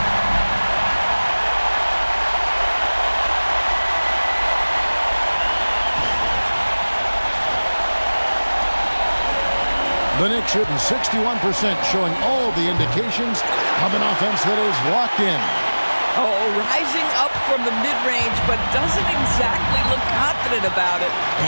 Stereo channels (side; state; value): both; inverted; correlation -1.00